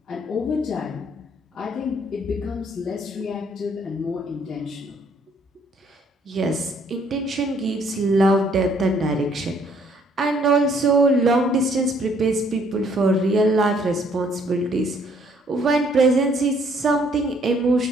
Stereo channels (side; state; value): both; normal; correlation 0.64